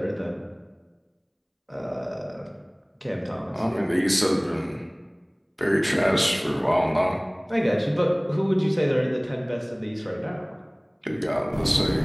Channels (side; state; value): both; identical; correlation 1.00